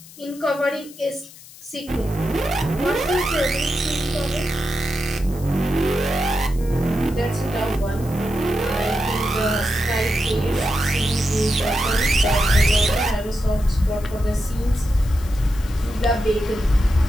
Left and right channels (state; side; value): noise; left; hiss, 20 dB below the sound